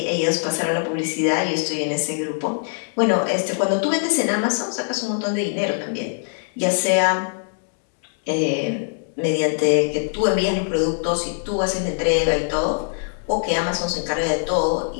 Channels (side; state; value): right; silent; digital silence